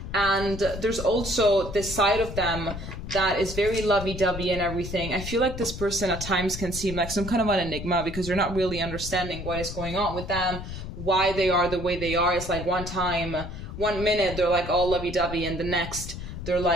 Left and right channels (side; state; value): left; noise; rumble, 8 dB below the sound